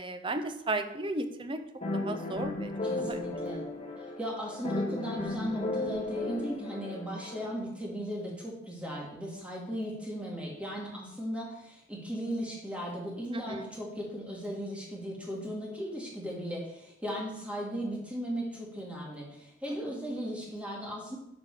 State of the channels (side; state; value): both; normal; correlation 0.61